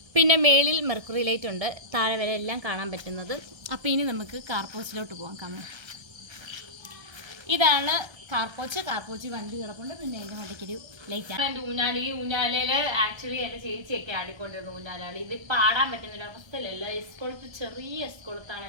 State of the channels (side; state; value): left; late; 1.3 ms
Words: പിന്നെ മേളിൽ മെർക്കുറി ലൈറ്റ് ഉണ്ട്. താഴെ വരെ എല്ലാം കാണാൻ പറ്റുന്നത്. അപ്പോൾ ഇനി നമുക്ക് കാർപോച്ചിലോട്ട് പോകാം. കാണാം, ഇതാണ് കാർപോച്ച് വണ്ടി കിടപ്പുണ്ട്. പിന്നെ എൻ്റെ മണ്ടയ്ക്കൊരു ലൈറ്റാണ്. എൻ്റെ ഊഞ്ഞാലയിൽ ആക്ച്വലി എൻ്റെ ചേച്ചിയൊക്കെ ആടിക്കൊണ്ടിരുന്നു ഊഞ്ഞാലാളി. ഇത് പാടാൻ പറ്റുന്നൊരു അവസ്ഥയിലല്ല. എസ്കൊളുത്ത്, ചെറിയ എസ്കൊളുത്താണ്